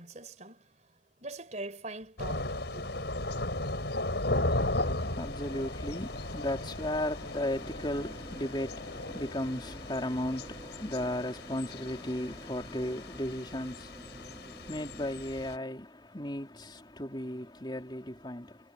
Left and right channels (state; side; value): normal; both; correlation 0.40